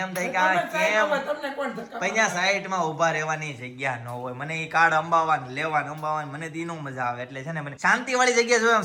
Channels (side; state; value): both; identical; correlation 1.00